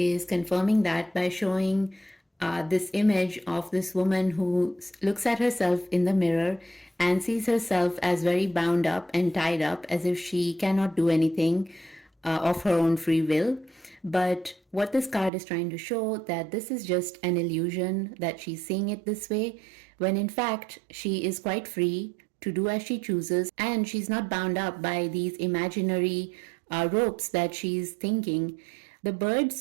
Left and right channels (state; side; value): drops out; left; at 15.3 s